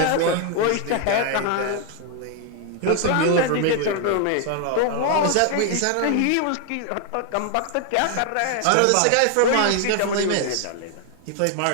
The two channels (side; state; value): both; different; correlation 0.01